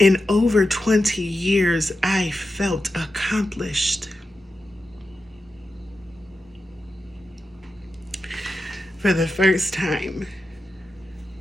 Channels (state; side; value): normal; both; correlation 0.90